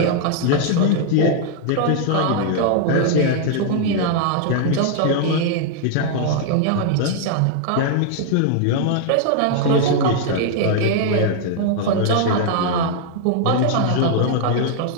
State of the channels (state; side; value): different; both; correlation 0.00